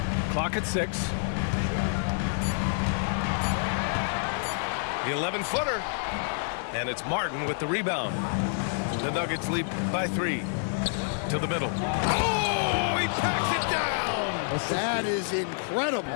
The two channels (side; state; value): right; silent; digital silence